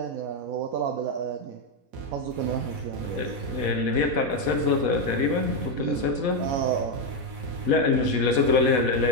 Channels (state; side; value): late; left; 4.1 ms